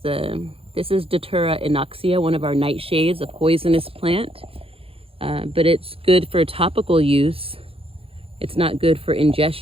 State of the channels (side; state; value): left; late; 0.27 ms